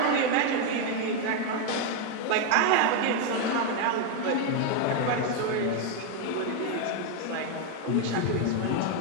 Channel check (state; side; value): different; both; correlation 0.01